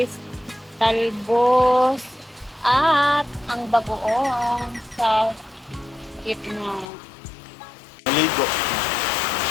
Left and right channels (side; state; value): right; drops out; at 6.9 s